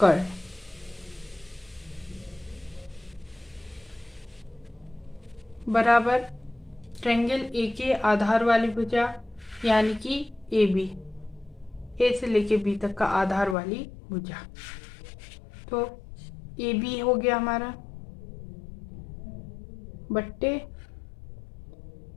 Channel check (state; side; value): drops out; right; at 13.6 s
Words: बराबर ट्रायंगल ए के आधार वाली भुजा यानी कि AB, A से लेके B तक का आधार वाली भुजा। तो AB हो गया हमारा बट्टे